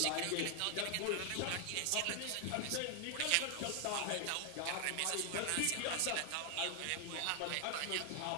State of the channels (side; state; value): both; different; correlation 0.00